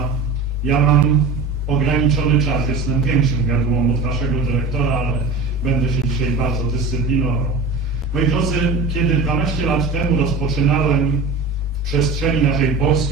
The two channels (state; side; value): quieter; left; 3.7 dB